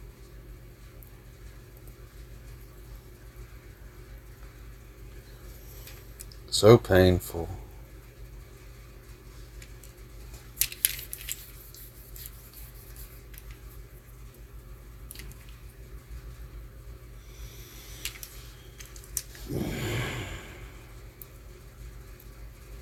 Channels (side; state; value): both; identical; correlation 1.00